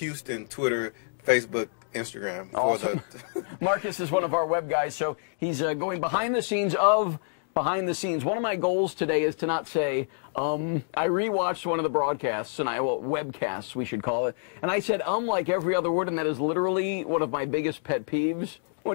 Twitter, Facebook, Instagram. Awesome. Marcus is one of our web guys, so he's going behind the scenes of behind the scenes. One of my goals today is to not say, I rewatched one of the broadcasts, and webcasts, we should call it, and I said, like every other word, and that is literally one of my biggest pet peeves.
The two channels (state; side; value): silent; right; digital silence